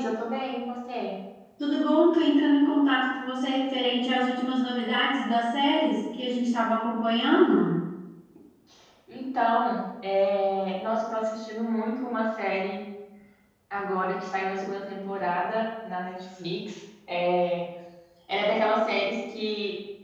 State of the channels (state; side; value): identical; both; correlation 1.00